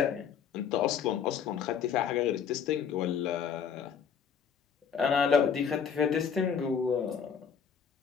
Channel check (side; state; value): right; quieter; 7.3 dB